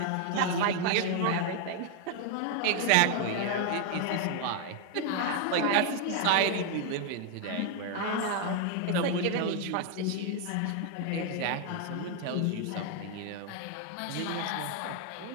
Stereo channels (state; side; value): different; both; correlation 0.00